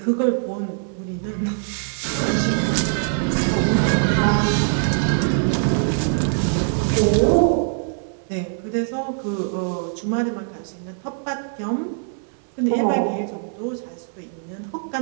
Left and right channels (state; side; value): silent; left; digital silence